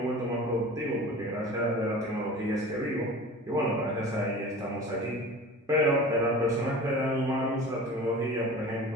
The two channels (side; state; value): both; normal; correlation 0.38